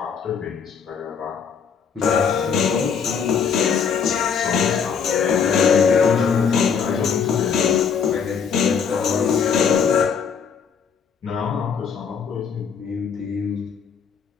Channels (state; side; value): quieter; right; 6.6 dB